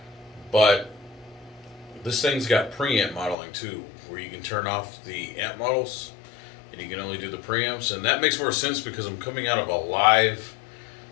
but this thing's got preamp modeling too, where you can turn off the amp models and you can only do the preamps, and that makes more sense because I'm coming out of a live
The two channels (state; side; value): drops out; right; at 3.4 s